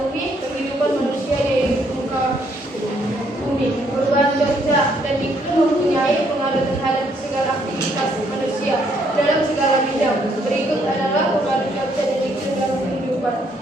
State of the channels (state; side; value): normal; both; correlation 0.69